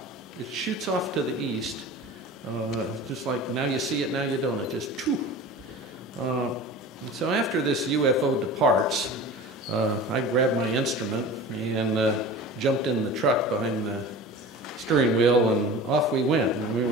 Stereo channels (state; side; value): normal; both; correlation 0.36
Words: it shoots off to the east, just like now you see it, now you don't. It just, choo. So after this UFO departs, I grabbed my instrument and jumped in the truck behind the steering wheel, and off we went. And we